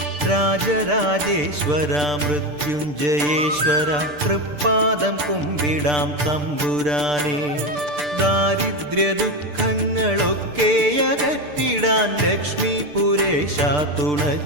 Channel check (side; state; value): left; late; 6.8 ms